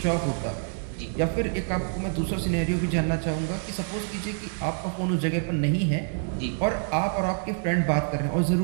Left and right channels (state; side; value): silent; left; 56 dB below the other